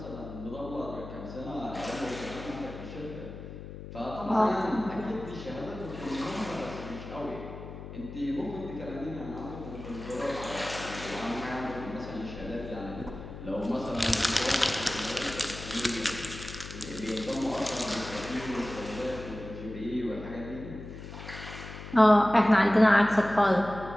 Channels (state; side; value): noise; left; hum, 11 dB below the sound